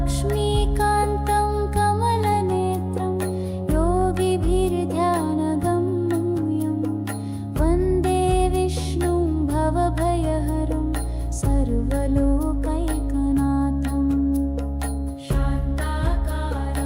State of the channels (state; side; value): identical; both; correlation 1.00